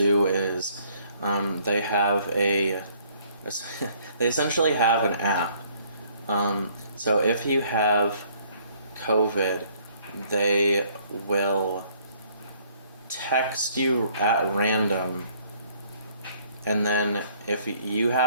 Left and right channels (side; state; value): both; inverted; correlation -0.62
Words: is they have they essentially have an app. So if you have COVID, they will text you at random, and then if you